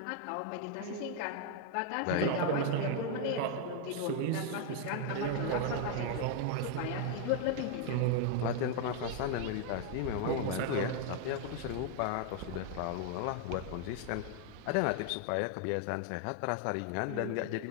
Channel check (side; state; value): both; different; correlation 0.00